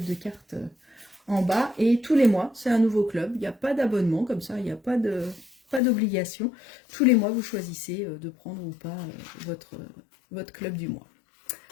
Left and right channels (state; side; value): drops out; right; at 5.8 s